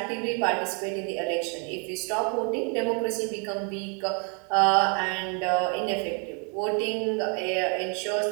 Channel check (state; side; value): quieter; left; 37.0 dB